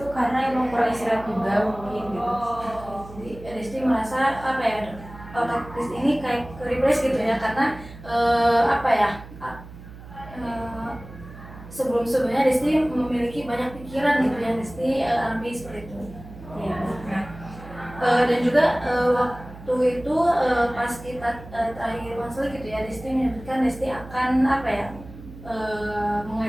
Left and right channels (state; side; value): noise; right; hum, 16 dB below the sound